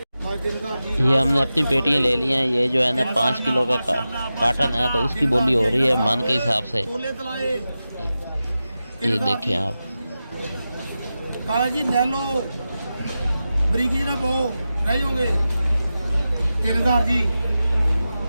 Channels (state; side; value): inverted; both; correlation -0.93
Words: ये हमने अपनी पेटियाँ ले ली हैं। ये जो है ना 5 किलो का कार्टन है, तो उसकी बोली हो रही है मन के हिसाब से। ये देखें आप। काला जी ले लो, बरीकी ना पो नहीं होंगे। 3,000 जी,